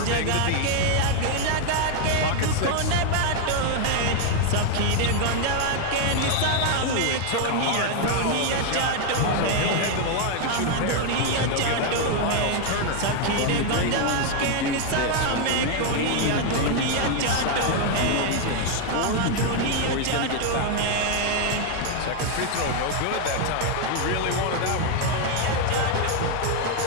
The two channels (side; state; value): both; different; correlation 0.01